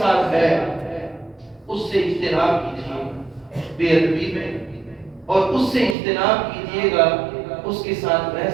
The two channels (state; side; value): drops out; left; at 6.0 s